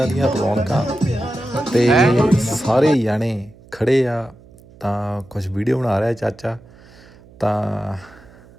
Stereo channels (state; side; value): noise; right; hum, 24 dB below the sound